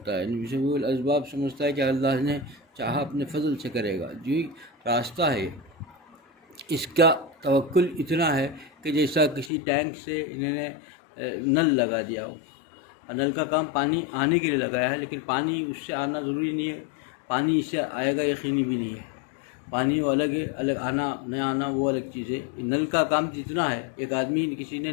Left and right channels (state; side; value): drops out; right; at 9.5 s